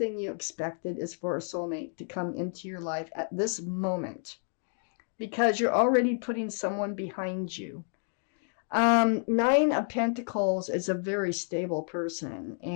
you expected is for a soulmate to come into your life at this moment, because you're already putting someone behind you. Nine of Pentacles is a very stable person,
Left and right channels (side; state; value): right; silent; 58 dB below the other